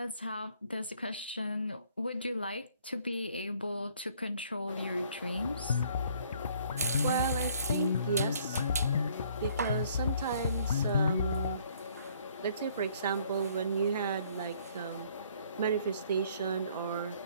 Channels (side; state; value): both; inverted; correlation -0.61